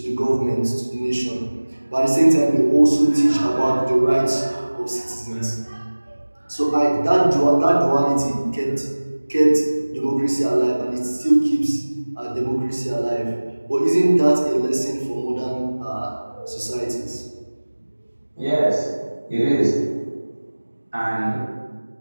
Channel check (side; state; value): both; inverted; correlation -1.00